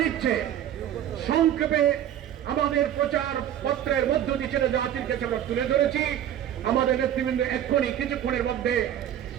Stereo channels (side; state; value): left; quieter; 10.8 dB